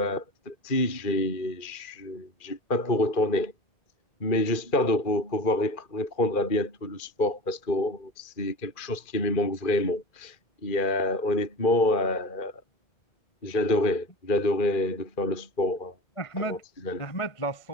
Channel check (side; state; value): right; late; 2.4 ms